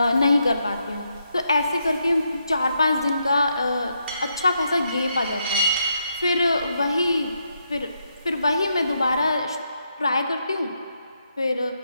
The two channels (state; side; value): inverted; both; correlation -0.80